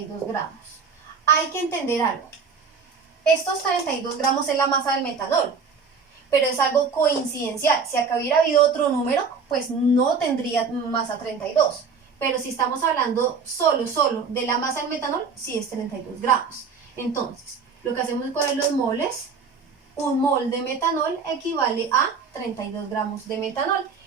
gramos. Hay que entender algo. Estos 32 gramos es la masa del metanol, pero es algo coincidencial. Si acá hubiera habido otro número, pues no tendría masa 32. Pero si estamos hablando solo de la masa del metanol, sí es 32 gramos. Entonces, lo que hacemos es coger los moles. Un mol de metanol equivale a 32 gramos de metanol.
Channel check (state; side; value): quieter; left; 5.3 dB